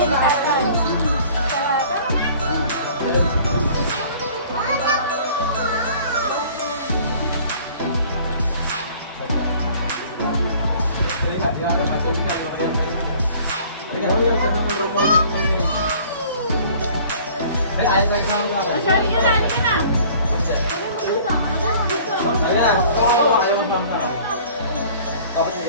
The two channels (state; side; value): inverted; both; correlation -0.51